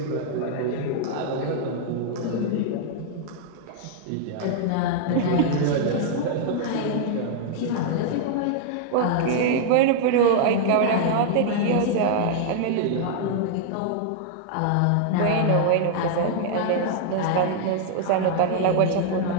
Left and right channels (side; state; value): both; different; correlation 0.00